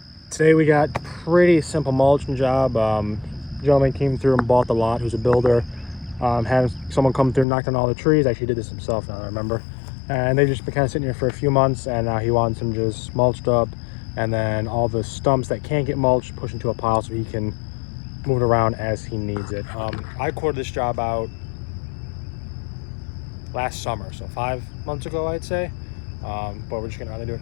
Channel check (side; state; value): right; drops out; at 7.5 s